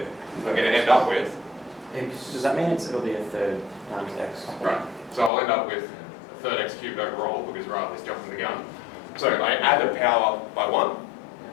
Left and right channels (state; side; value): drops out; right; at 5.3 s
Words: I'm going to end up with... Does that mean it'll be a third times x? Right. So I'll end up with a third x cubed overall, because rather than jumping the gun. So I add the power by 1.